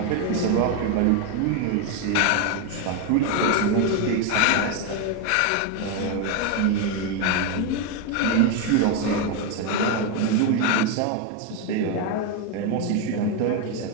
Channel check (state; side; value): different; both; correlation 0.02